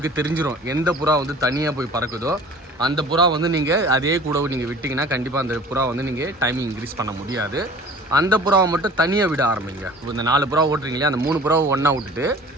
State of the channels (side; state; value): both; normal; correlation 0.45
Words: தெரிஞ்சிடும் எந்த புறா வந்து தனியாக போய் பறக்குதோ அந்த புறா வந்து நீங்கள் அதே கூட நீங்கள் விட்டிங்கன்னா கண்டிப்பாக அந்த புறா வந்து நீங்கள் டைமிங் இன்க்ரீஸ் பண்ண முடியாது. அந்த புறாவை மட்டும் தனியாக விட ஆரம்பிங்க. இந்த 4 புறா ஓட்டுறீங்களே, அந்த 3 புறாவை ஒன்றா விட்டுட்டு